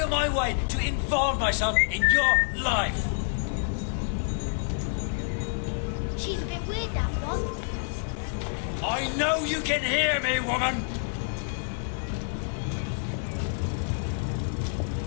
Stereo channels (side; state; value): right; silent; digital silence